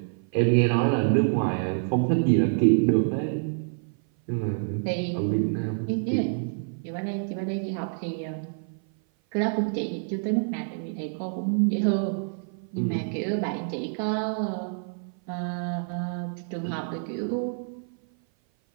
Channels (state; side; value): silent; left; 56 dB below the other